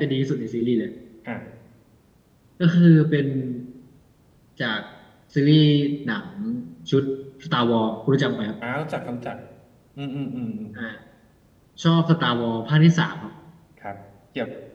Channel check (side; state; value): both; identical; correlation 1.00